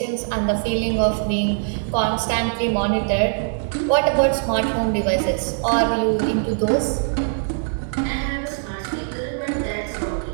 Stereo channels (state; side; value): silent; left; 64 dB below the other